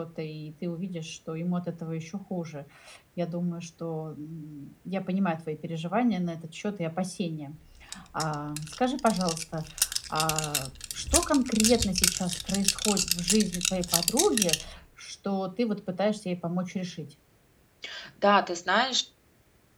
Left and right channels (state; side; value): identical; both; correlation 1.00